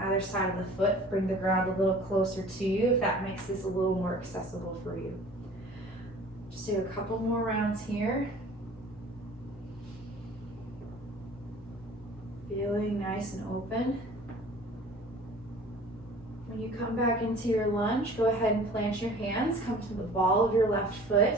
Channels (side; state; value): both; normal; correlation 0.46